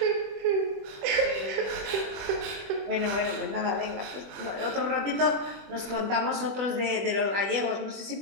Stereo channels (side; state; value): left; late; 21 ms